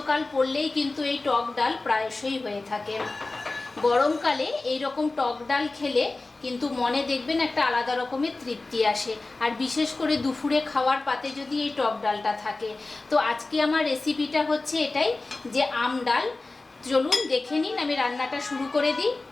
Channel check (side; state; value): right; quieter; 3.3 dB